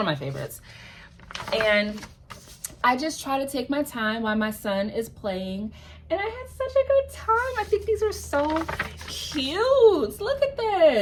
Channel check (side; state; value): both; identical; correlation 1.00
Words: my favorites. And I just try to take my time while my son is playing, and I had such a good time. I think these are so cute. Look at